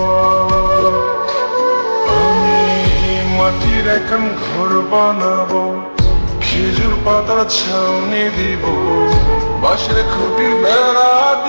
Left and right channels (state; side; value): inverted; both; correlation -1.00